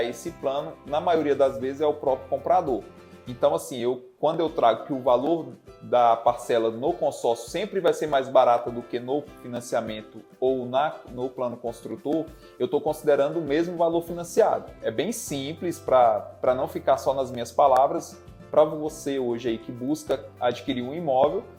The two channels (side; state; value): both; identical; correlation 1.00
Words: esse plano, na maioria das vezes é o próprio comprador. Então assim, quando eu trago que o valor da parcela no consórcio sempre vai ser mais barata do que no financiamento ou no plano construtor, eu estou considerando o mesmo valor financiado. É bem simples, para não ficar só nas minhas palavras. Para você hoje aí que busca adquirir um imóvel,